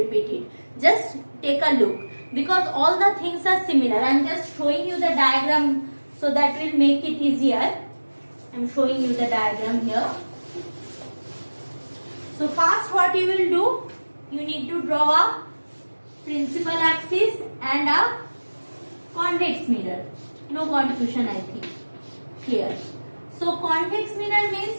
it. Just take a look, because all the things are similar. I am just showing you the diagram so that will make it easier. I am showing you the diagram here. So first what you will do, you need to draw a principal axis and a convex mirror. No confusion, I think. Clear. So convex mirror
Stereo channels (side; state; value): both; inverted; correlation -1.00